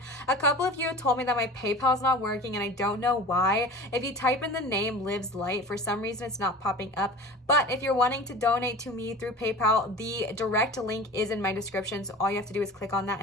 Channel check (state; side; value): normal; both; correlation 0.37